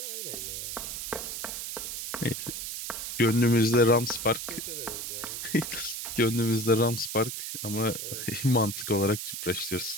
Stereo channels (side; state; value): right; noise; hiss, 5 dB below the sound